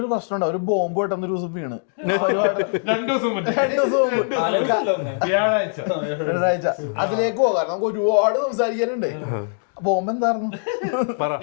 ഒരു പ്രശ്നം ഉണ്ടാവും, ഒരു ബോംബ് പെട്ടെന്ന് ഒരു ദിവസം വീണ് 2 ദിവസം വ്യാഴാഴ്ച അതിലേക്ക് പോകാം. നമുക്ക് ഒരുപാട് സംസാരിക്കാനുണ്ട്. ബോംബ് എന്തായിരുന്നു?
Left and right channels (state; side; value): silent; right; digital silence